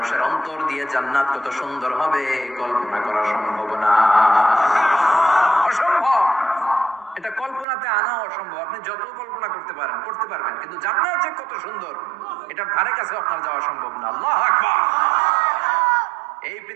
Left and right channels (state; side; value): drops out; left; at 7.7 s